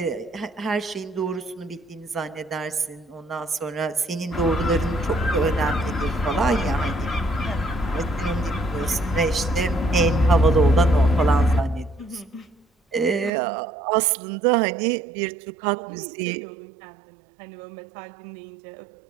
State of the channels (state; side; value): drops out; left; at 13.3 s